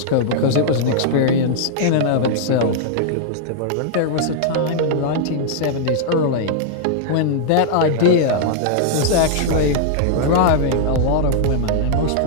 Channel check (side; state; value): both; different; correlation -0.01